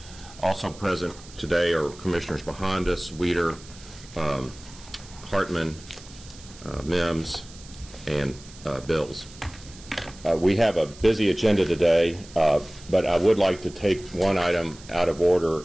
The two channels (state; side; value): noise; right; hiss, 20 dB below the sound